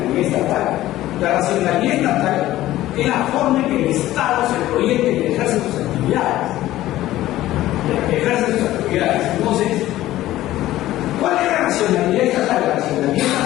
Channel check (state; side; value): quieter; right; 15.0 dB